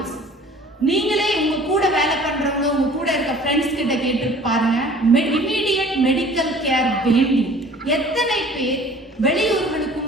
நீங்களே உங்க கூட வேலை பண்றவங்க, உங்க கூட இருக்க ஃப்ரெண்ட்ஸ் கிட்ட கேட்டு பாருங்க. இமீடியட் மெடிக்கல் கேர் வேண்டி எத்தனை பேர்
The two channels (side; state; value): both; normal; correlation 0.49